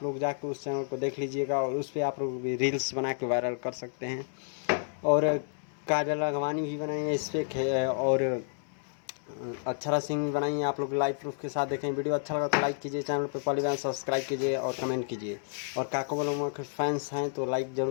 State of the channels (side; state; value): right; silent; 58 dB below the other